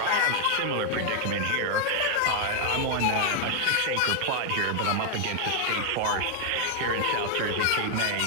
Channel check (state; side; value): different; both; correlation -0.01